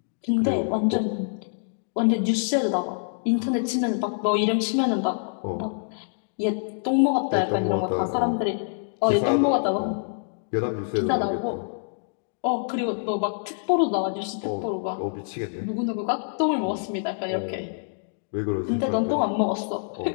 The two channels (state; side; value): silent; right; digital silence